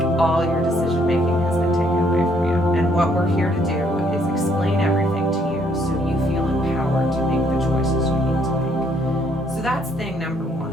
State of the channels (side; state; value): both; normal; correlation 0.67